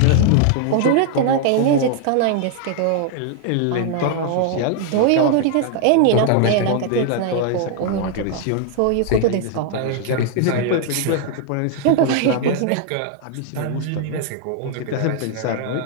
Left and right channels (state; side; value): different; both; correlation 0.00